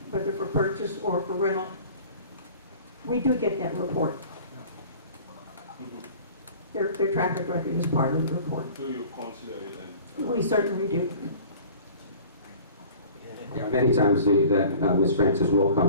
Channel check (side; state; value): both; inverted; correlation -0.45